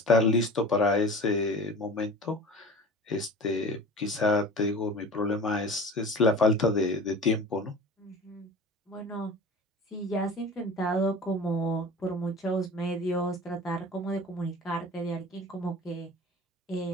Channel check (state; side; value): normal; both; correlation 0.38